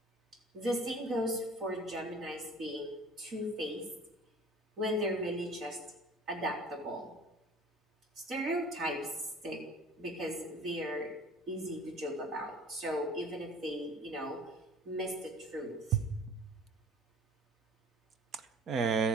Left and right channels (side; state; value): both; normal; correlation 0.47